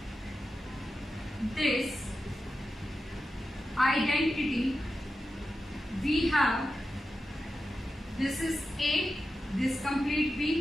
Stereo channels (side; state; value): both; normal; correlation 0.91